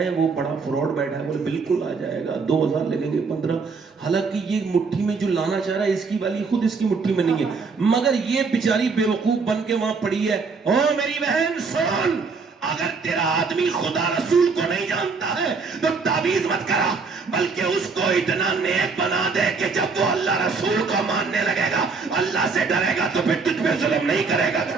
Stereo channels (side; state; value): left; quieter; 4.7 dB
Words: وہ بڑا فراڈ بیٹھا ہے, بولے بالکل آ جائے گا, 2000 لگیں گے 15. حالانکہ یہ مٹھی میں جو لانا چاہ رہا ہے اس کی والی خود اس کی مٹھی میں نہیں ہے, مگر یہ بیچاری بیوقوف بن کے وہاں پڑی ہے. او میری بہن سن, اگر تیرا آدمی خدا رسول کو نہیں جانتا ہے تو تعویذ مت کرا, بلکہ اس کو اتنا نیک بنا دے کہ جب وہ اللہ رسول کو ماننے لگے گا, اللہ سے ڈرے گا, تو پھر تجھ پہ ظلم نہیں کرے گا.